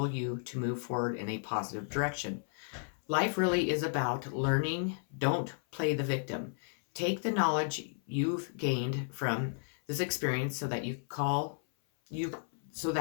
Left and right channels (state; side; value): silent; right; 55 dB below the other